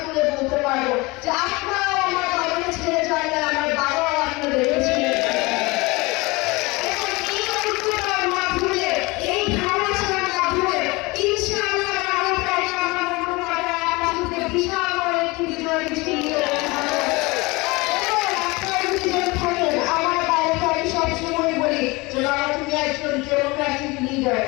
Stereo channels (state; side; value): quieter; right; 24.0 dB